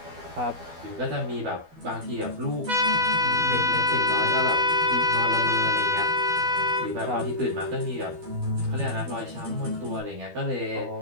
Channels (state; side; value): late; left; 12 ms